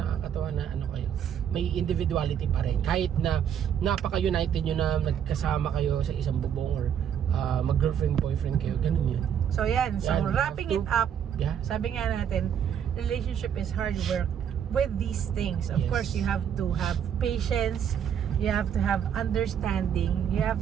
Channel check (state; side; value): quieter; left; 8.7 dB